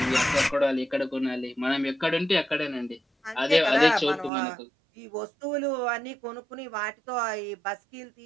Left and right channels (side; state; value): left; drops out; at 4.3 s